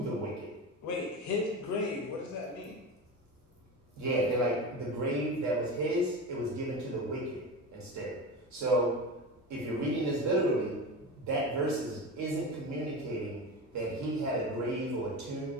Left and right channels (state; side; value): normal; both; correlation 0.25